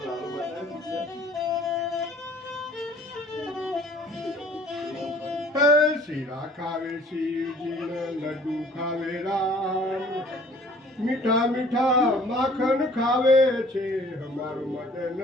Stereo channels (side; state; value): both; normal; correlation 0.53